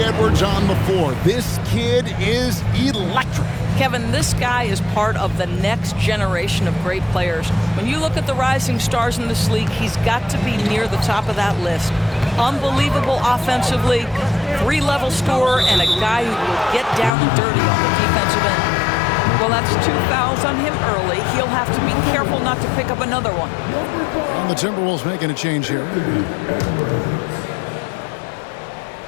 Edwards on the floor. This kid is electric. Kevin, this guy is part of the next generation of great players. When you look at the rising stars in this league, he's got to be near the top of that list. Unbelievable offensively, 3-level scorer, and a guy who will get down and dirty on the defensive end. Well, that's 2 fouls on him early. He'll have to be careful not to pick up another one. And the Timberwolves making a change here.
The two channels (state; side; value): drops out; right; at 17.2 s